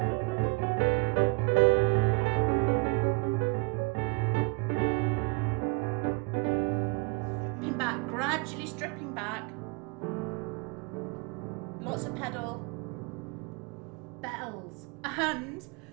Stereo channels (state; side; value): quieter; left; 30.4 dB